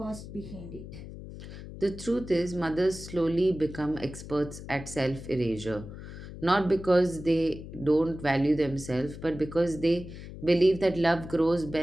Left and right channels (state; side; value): noise; left; hum, 12 dB below the sound